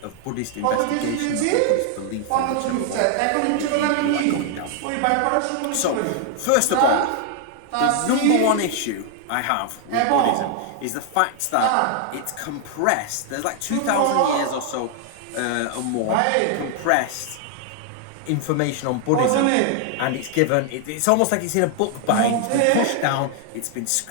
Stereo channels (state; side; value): different; both; correlation 0.00